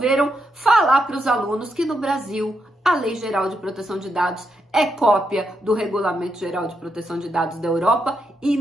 falar para os alunos que no Brasil a Lei Geral de Proteção de Dados é cópia do Regulamento Geral de Proteção de Dados da Europa e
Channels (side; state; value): both; normal; correlation 0.82